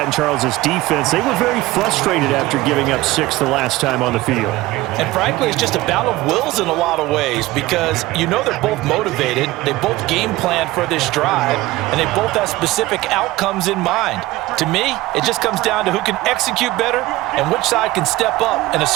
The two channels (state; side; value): quieter; left; 18.3 dB